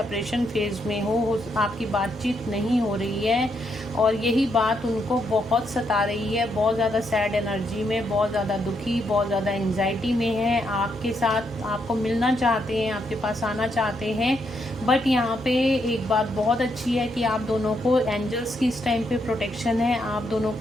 फेज में हो, आपकी बातचीत नहीं हो रही है और यही बात उनको बहुत सता रही है। बहुत ज़्यादा सैड एनर्जी में, बहुत ज़्यादा दुखी, बहुत ज़्यादा एंजाइटी में है। आपके साथ आपको मिलना चाहते हैं, आपके पास आना चाहते हैं, बट यहाँ पे एक बात बहुत अच्छी है कि आप दोनों को एंजल्स की इस टाइम पे प्रोटेक्शन है, आप दोनों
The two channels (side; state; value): both; normal; correlation 0.78